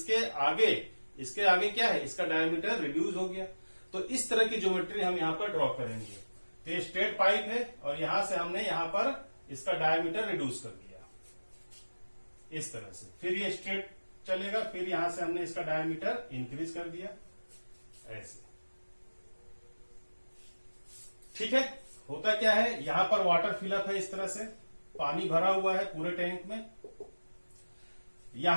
आगे क्या है? इसका डायामीटर रिड्यूस हो गया। तो इस तरह की ज्योमेट्री हम यहां पर ड्रॉ करेंगे। तो ये स्ट्रेट पाइप है और यहां से हमने यहां पर इसका डायामीटर रिड्यूस कर दिया इस तरह से। फिर ये स्ट्रेट चलेगा, फिर यहां से हमने इसका डायमीटर इंक्रीज कर दिया ऐसे। ठीक है, होता क्या है? यहां पर वाटर फिलअप है, इस तरह से पानी भरा हुआ है पूरे टैंक में।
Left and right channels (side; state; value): both; inverted; correlation -1.00